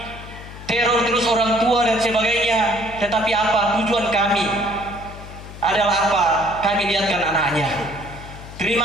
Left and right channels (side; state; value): left; noise; hum, 14 dB below the sound